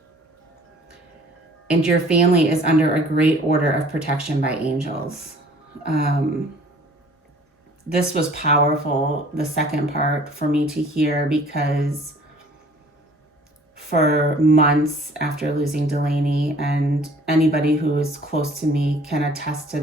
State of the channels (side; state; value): both; normal; correlation 0.52